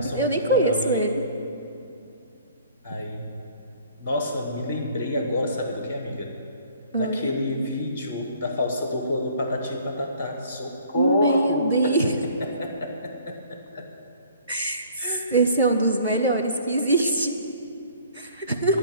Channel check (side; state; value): both; inverted; correlation -0.53